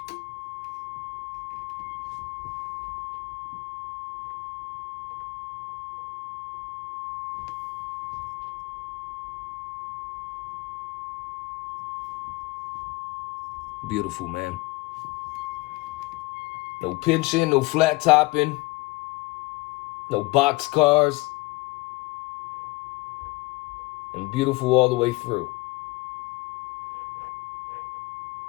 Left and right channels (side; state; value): right; quieter; 21.9 dB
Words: Beautiful, man. No pinching, no flat topping, no box cars, and beautiful all the way through.